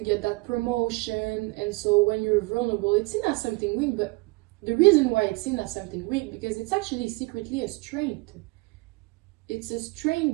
that promotion. And so when you're vulnerable, it's seen as something weak. But the reason why it's seen as something weak, because it's actually secretly a strength. It's a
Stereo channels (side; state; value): left; quieter; 25.7 dB